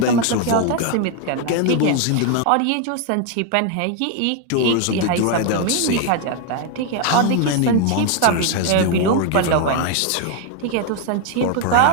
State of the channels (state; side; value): different; both; correlation 0.01